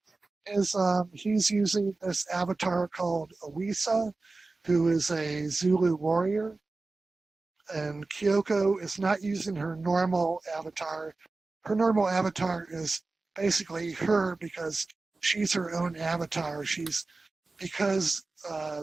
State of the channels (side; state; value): left; quieter; 3.5 dB